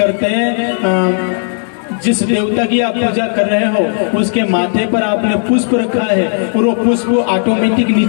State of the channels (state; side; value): silent; right; 59 dB below the other